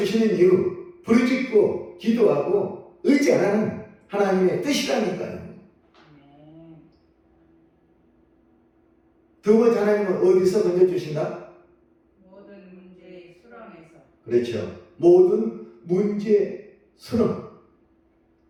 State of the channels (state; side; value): identical; both; correlation 1.00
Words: 이유, 부르짖고 기도하고 의지 안 하는 하나님의 뜻이라니까요. 아멘. 두 번째, 하나님은 어디서 건져주신다? 모든 문제의 수렁에서. 그렇죠. 모든 문제 수렁.